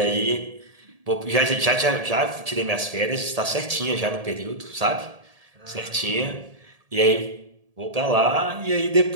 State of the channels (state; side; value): late; left; 1.7 ms